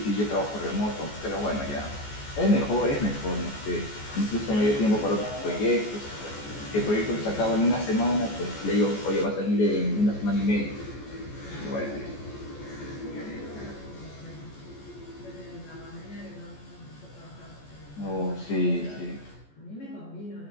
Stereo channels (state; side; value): late; right; 14 ms